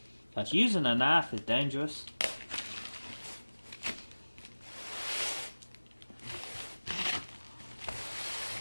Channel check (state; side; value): inverted; both; correlation -1.00